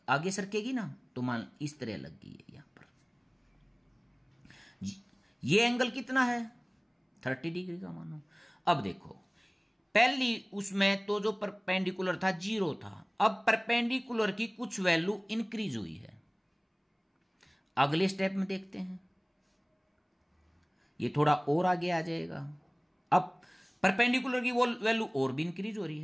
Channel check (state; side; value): identical; both; correlation 1.00